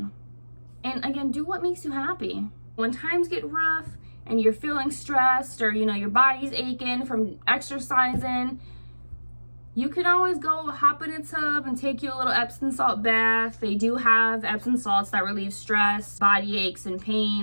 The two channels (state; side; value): inverted; both; correlation -1.00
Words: And again, do what makes you happy. When times get rough and you're feeling stressed or, your body's aching from exercising, you can always go hop in a tub and take you a little Epsom salt bath. They do have Epsom salts that relieve stress, body aches, and